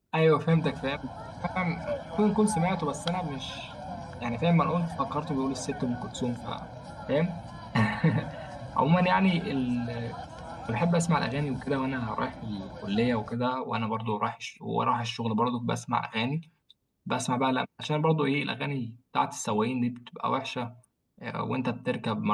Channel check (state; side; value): identical; both; correlation 1.00